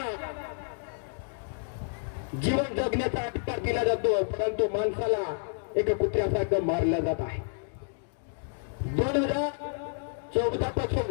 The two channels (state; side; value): silent; right; digital silence